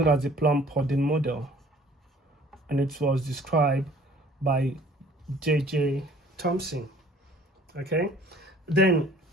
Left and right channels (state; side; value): normal; both; correlation 0.53